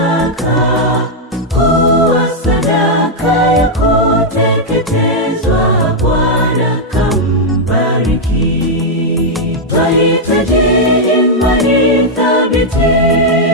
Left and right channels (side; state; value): both; normal; correlation -0.03